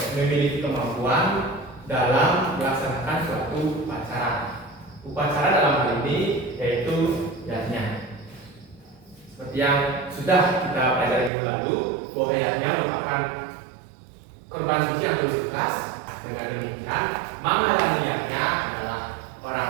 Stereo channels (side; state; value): left; drops out; at 11.3 s